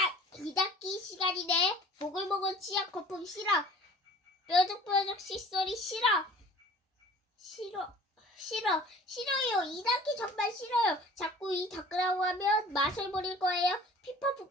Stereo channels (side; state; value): both; normal; correlation 0.47